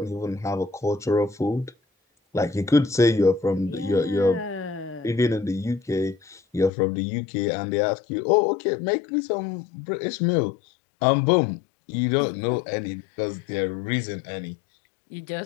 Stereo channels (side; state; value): right; drops out; at 6.7 s